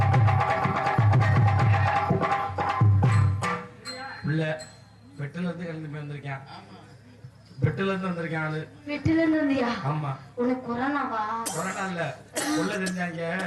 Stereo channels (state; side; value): identical; both; correlation 1.00